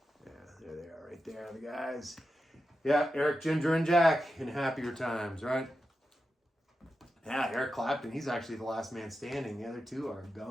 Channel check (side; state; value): both; normal; correlation 0.90